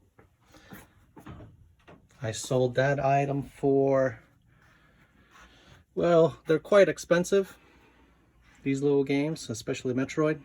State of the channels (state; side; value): identical; both; correlation 1.00